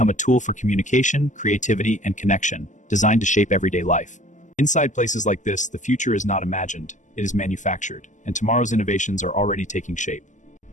a tool for communication, creativity, and connection, designed to shape everyday life. Inside places like this, the future is not imagined, it is manufactured, and tomorrow's innovations are already taking shape.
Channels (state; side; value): late; right; 0.36 ms